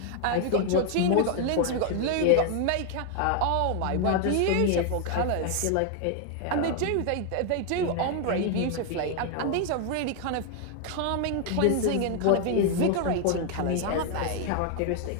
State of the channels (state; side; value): different; both; correlation 0.00